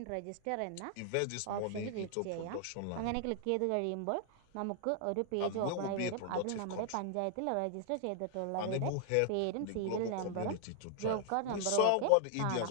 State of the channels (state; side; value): different; both; correlation 0.00